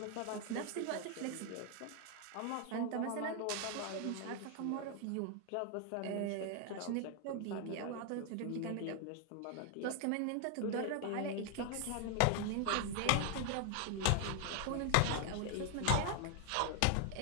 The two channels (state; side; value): different; both; correlation 0.00